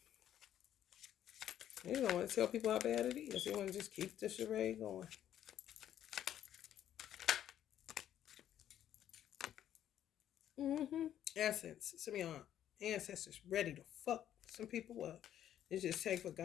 You don't want to tell people how bad it is. You want to just keep the charade going. Essence. Some of y'all ancestors ready to fuck some people up. It just take for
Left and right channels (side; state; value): right; quieter; 10.9 dB